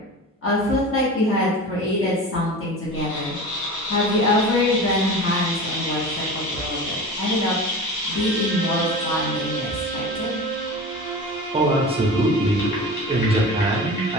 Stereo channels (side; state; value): both; normal; correlation 0.33